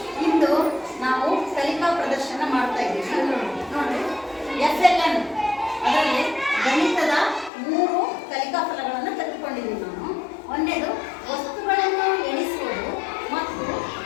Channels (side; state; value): right; drops out; at 7.5 s